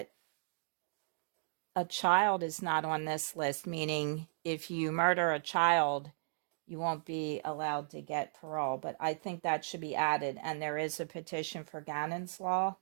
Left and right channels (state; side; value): silent; left; digital silence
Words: a child is not on this list, meaning if you murder a child, you won't be allowed to get parole. But I think that should be added. And there is a petition for Gannon's law